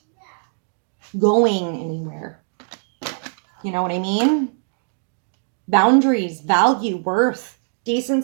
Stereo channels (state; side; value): silent; left; digital silence